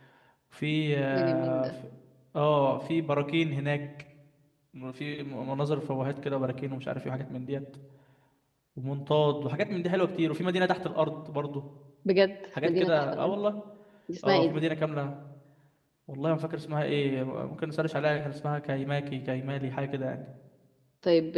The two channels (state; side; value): identical; both; correlation 1.00